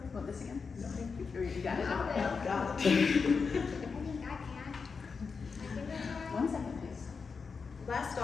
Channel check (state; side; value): quieter; right; 5.2 dB